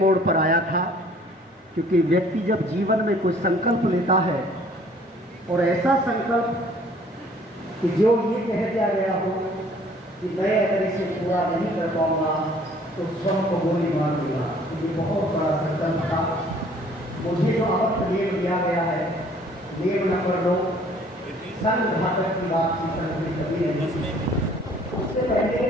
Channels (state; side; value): normal; both; correlation 0.56